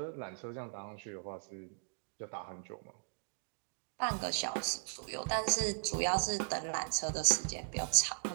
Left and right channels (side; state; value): left; silent; digital silence